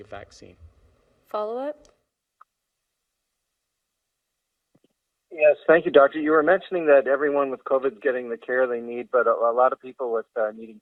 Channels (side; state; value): both; identical; correlation 1.00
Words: of vaccine. Follow-up? Yes, thank you, Doctor. You were mentioning that everyone with COVID is getting the care they need, but a lot of people with needing